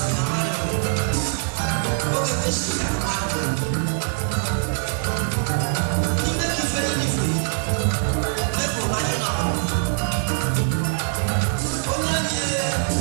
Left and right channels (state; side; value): silent; left; 60 dB below the other